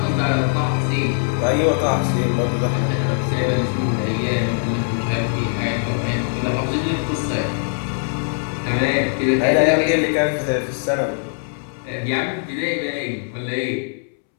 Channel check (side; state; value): right; silent; 65 dB below the other